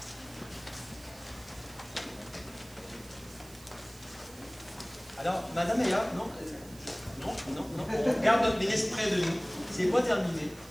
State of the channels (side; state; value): right; noise; hiss, 21 dB below the sound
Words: Alors, Madame Meilleur, non, on regarde notre ministre près de nous. C'est pas terminé.